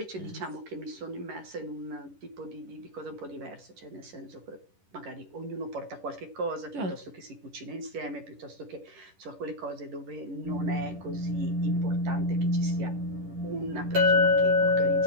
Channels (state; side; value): late; left; 10 ms